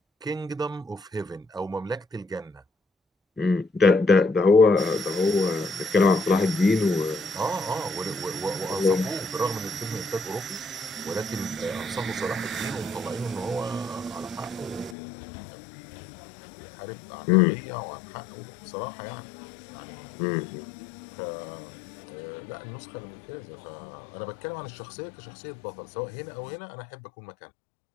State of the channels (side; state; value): right; drops out; at 15.0 s